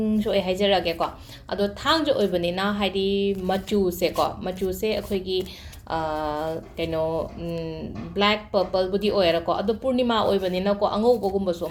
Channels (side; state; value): both; identical; correlation 1.00